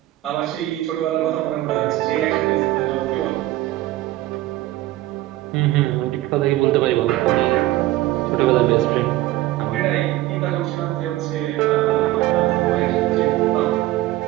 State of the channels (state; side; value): quieter; left; 16.2 dB